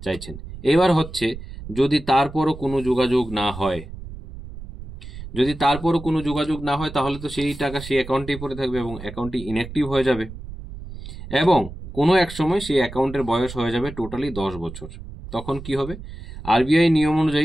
চাইছেন। এবার হচ্ছে যদি তারপরও কোনো যোগাযোগ না হয়, তাহলে তো সেই টাকা সেই অ্যাকাউন্টেই পড়ে থাকবে এবং অ্যাকাউন্টটি ইনঅ্যাক্টিভ হয়ে যাবে এবং কোনো এক সময় সেই অ্যাকাউন্টের বয়স হয়ে যাবে টোটালি 10 বছর। তখন কি হবে? আরবিআই নিয়ম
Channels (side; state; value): right; noise; rumble, 12 dB below the sound